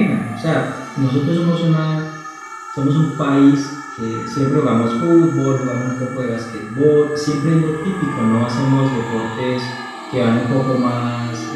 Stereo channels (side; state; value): both; identical; correlation 1.00